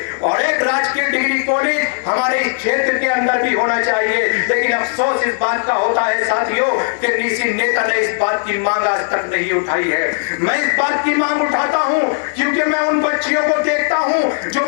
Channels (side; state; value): right; silent; digital silence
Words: और एक राजकीय डिग्री कॉलेज हमारे इस क्षेत्र के अंदर भी होना चाहिए। लेकिन अफसोस इस बात का होता है साथियों कि किसी नेता ने इस बात की मांग आज तक नहीं उठाई है। मैं इस बात की मांग उठाता हूं क्योंकि मैं उन बच्चियों को देखता हूं जो